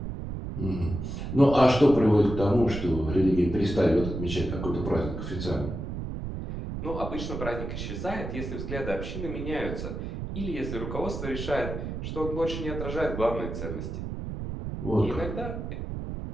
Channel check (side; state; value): right; noise; rumble, 6 dB below the sound